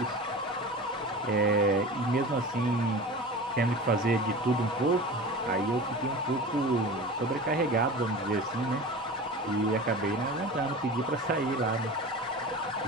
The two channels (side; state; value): both; normal; correlation 0.34